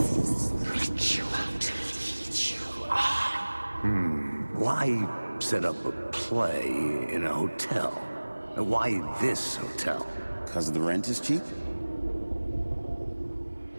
Why set up a play in a hotel? And why this hotel? Because the rent is cheap?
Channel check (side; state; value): both; inverted; correlation -1.00